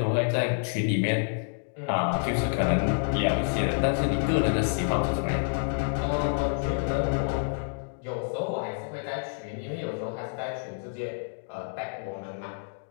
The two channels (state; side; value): silent; right; digital silence